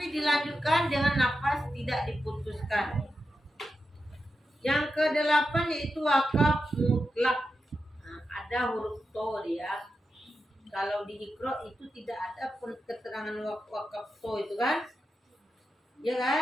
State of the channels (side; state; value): both; normal; correlation 0.89